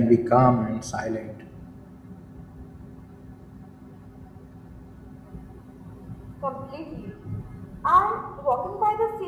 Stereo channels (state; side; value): identical; both; correlation 1.00